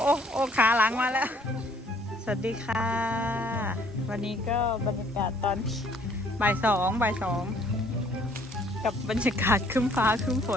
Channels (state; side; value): normal; both; correlation 0.61